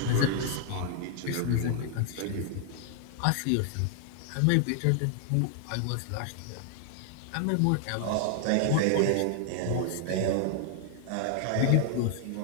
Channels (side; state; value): both; different; correlation 0.00